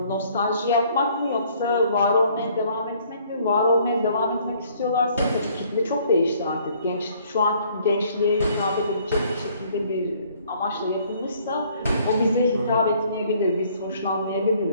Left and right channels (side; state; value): both; inverted; correlation -0.61